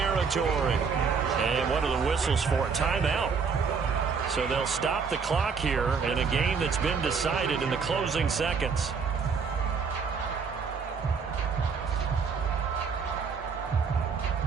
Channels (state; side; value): quieter; left; 5.6 dB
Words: And what are the whistles for? A timeout. So they'll stop the clock here in a game that's been decided in the closing seconds.